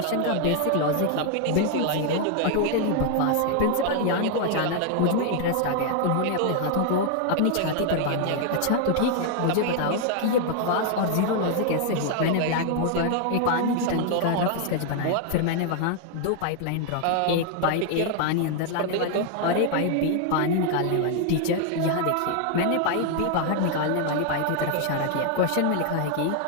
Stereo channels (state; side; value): different; both; correlation 0.00